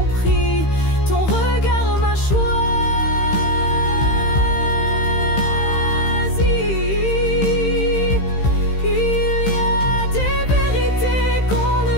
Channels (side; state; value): right; late; 15 ms